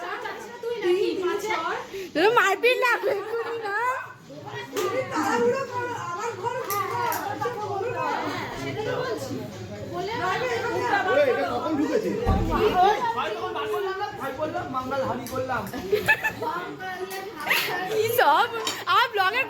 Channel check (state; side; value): identical; both; correlation 1.00